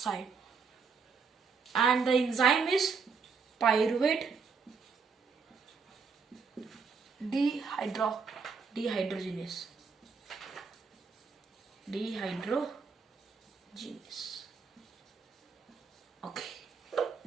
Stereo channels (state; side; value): quieter; left; 5.4 dB